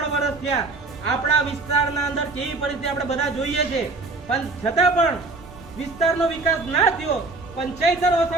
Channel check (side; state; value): left; quieter; 3.5 dB